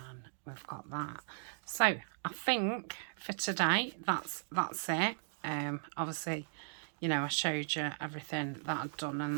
we've got that. So I think for today that's it. Obviously, you know, I showed you everything that I'd done, and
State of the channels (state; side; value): silent; left; digital silence